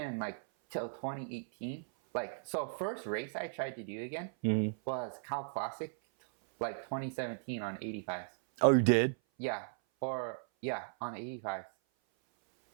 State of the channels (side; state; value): left; silent; 53 dB below the other